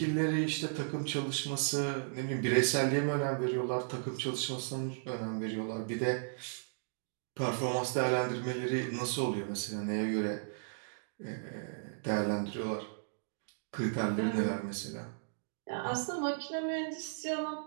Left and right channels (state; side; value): silent; left; digital silence